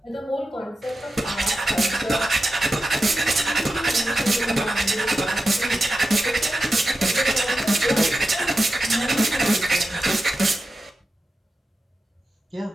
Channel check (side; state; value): both; normal; correlation 0.92